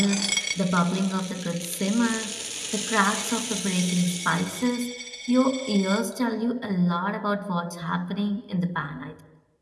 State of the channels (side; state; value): both; identical; correlation 1.00